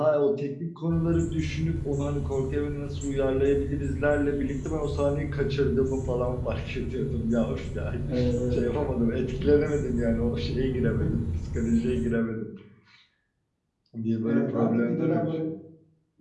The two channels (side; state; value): both; identical; correlation 1.00